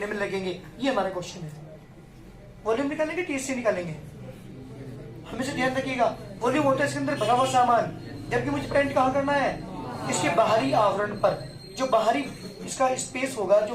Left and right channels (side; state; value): both; identical; correlation 1.00